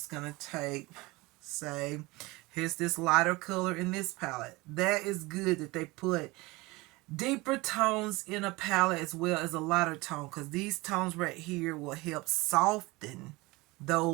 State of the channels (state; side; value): quieter; left; 22.6 dB